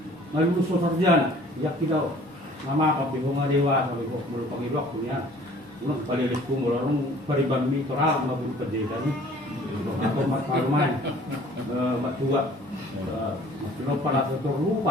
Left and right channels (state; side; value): normal; both; correlation 0.51